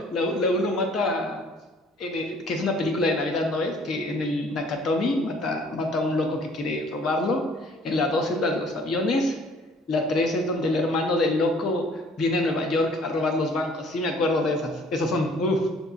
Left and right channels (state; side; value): normal; both; correlation 0.56